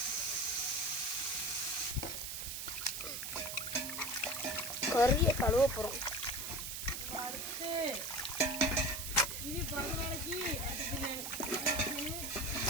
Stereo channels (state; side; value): noise; right; hiss, 5 dB below the sound